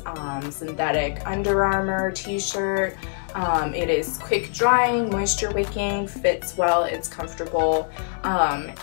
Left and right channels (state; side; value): silent; right; 63 dB below the other